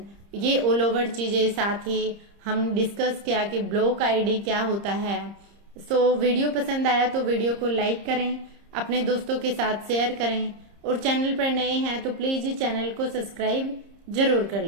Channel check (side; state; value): left; late; 30 ms